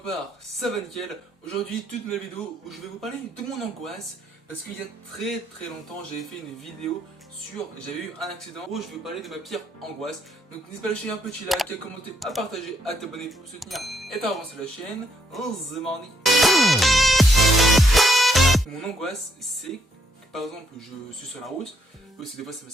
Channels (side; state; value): both; normal; correlation 0.73